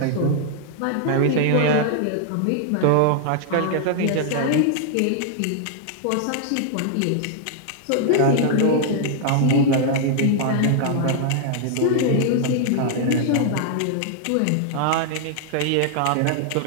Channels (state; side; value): different; both; correlation 0.00